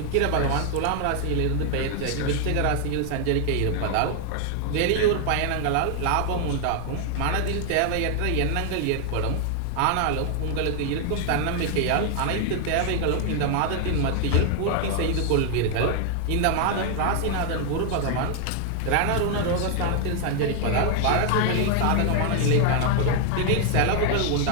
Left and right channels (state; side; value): different; both; correlation 0.00